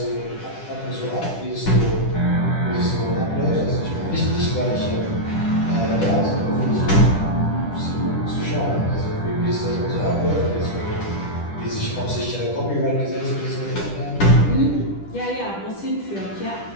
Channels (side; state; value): right; late; 10 ms